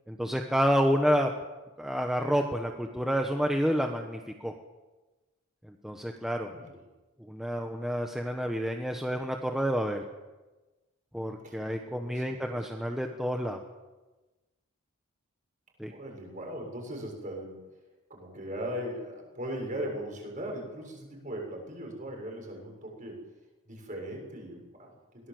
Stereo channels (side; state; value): both; normal; correlation 0.82